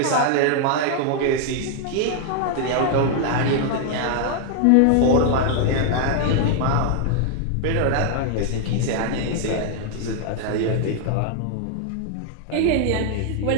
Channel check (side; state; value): both; different; correlation 0.00